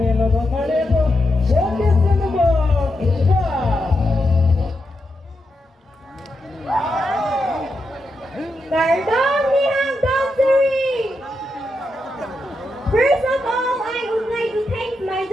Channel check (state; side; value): normal; both; correlation 0.85